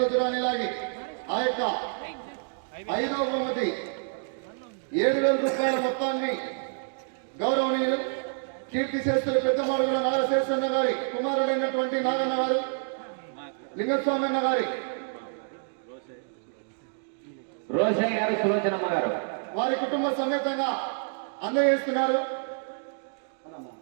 దూరాన్ని లాగి ఆ యొక్క 5వ బహుమతి 7,000 రూపాయల మొత్తాన్ని గౌరవనీయులు కీర్తి శేషులు పెద్దమాడుగుల నాగశేషన్న గారి కుమారుడైనటువంటి నాగన్న గారు, లింగస్వామన్న గారి, రోషయ్య గారు, సులోచనమ్మ గారు వారి కుటుంబ సమేతంగా అందజేస్తున్నారు.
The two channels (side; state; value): left; silent; digital silence